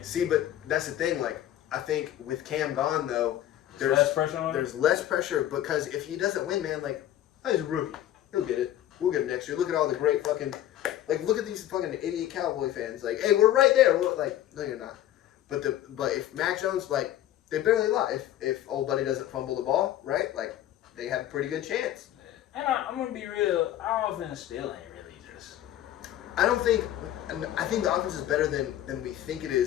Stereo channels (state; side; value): quieter; right; 12.6 dB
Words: See, but that's the thing. I think with Cam gone, though, there's less pressure on him? There's less pressure because if he doesn't win, man, he's a rookie. He'll get it. We'll get it next year. Look at all the great fucking, look at these fucking idiot Cowboy fans. Hey, we're right there. No, you're not. But if Mac Jones, they barely lie. If old buddy doesn't fumble the ball, right? They have a pretty good chance. And I'm gonna be real. Our offense still ain't really just. I think the offense is better than we think it